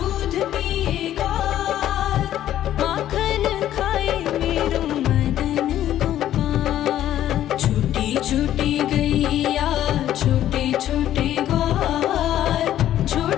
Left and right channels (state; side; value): quieter; right; 12.1 dB